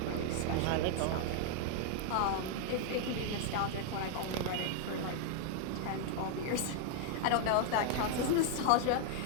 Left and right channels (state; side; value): different; both; correlation 0.00